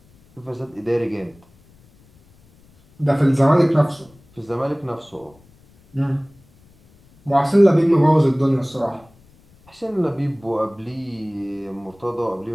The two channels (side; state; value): left; noise; rumble, 29 dB below the sound